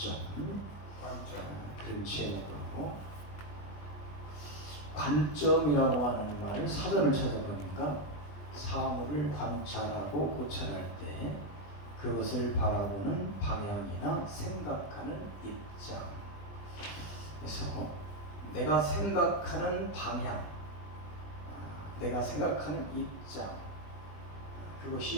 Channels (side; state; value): right; late; 20 ms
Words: 그런 제목으로 관점이라고 하는 말을 사전을 찾아보니까 사물을 관찰하고 고찰할 때 그것을 바라보는 방향이나 생각하는 입장. 그래서 내가 생각하는 방향, 내가 생각하는 입장,